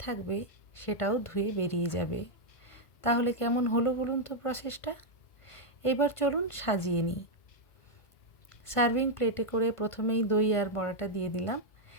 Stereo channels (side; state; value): right; late; 1.5 ms